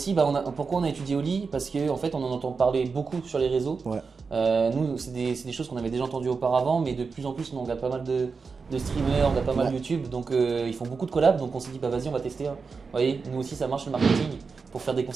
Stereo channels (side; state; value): left; quieter; 4.9 dB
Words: pourquoi on a étudié Oli? Parce qu'en fait, on en entend parler beaucoup sur les réseaux. Ouais. Nous, c'est des choses qu'on avait déjà entendues auparavant, mais de plus en plus, on regarde pas mal de streamers, on regarde pas mal YouTube, donc ils font beaucoup de collabs, donc on s'est dit vas-y, on va tester. Vous voyez, nous aussi ça marche le marketing pour faire des